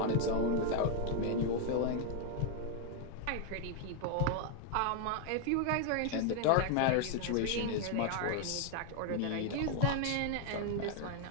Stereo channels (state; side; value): different; both; correlation 0.01